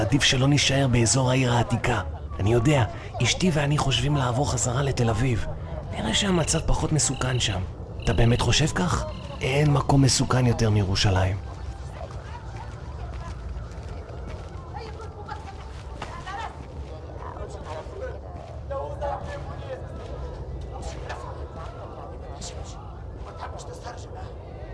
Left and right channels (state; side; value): identical; both; correlation 1.00